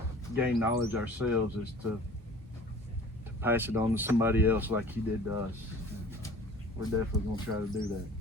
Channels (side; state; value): both; normal; correlation 0.46